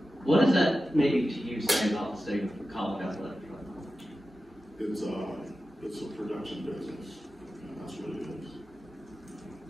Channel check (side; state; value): both; normal; correlation 0.93